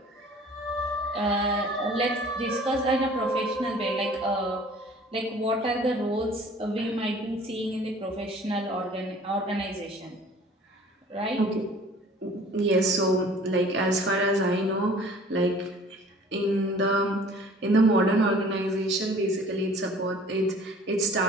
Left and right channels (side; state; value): both; normal; correlation 0.49